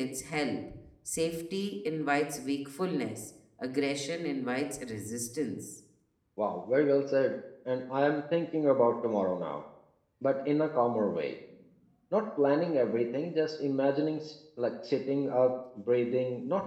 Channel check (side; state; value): both; identical; correlation 1.00